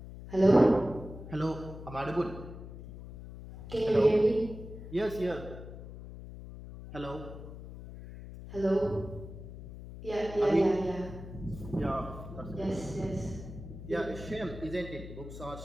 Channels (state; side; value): noise; left; hum, 12 dB below the sound